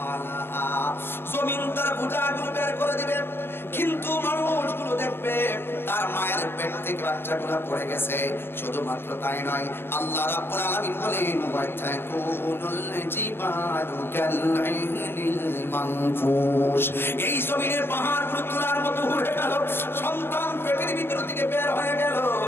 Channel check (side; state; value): right; late; 0.11 ms